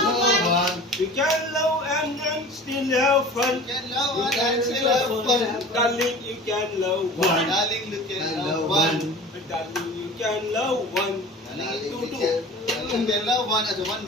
love one. You can love and still have fun. You can love one and still have fun. Darling, you can love one. Darling, you can love one. Darling, you can love one. Darling, Two, you two. can love one as a one.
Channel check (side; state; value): both; normal; correlation 0.39